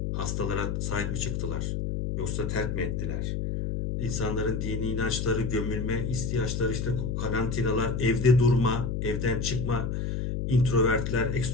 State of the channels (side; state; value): left; noise; hum, 1 dB below the sound